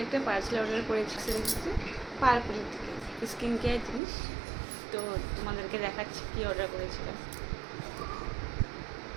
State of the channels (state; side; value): drops out; left; at 4.0 s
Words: একটা পার্সেল অর্ডার করেছি, দেখেছি পার্পল থেকে স্কিন কেয়ার জিনিস। তো তোমাদেরকে দেখাচ্ছি কি অর্ডার করেছিলাম।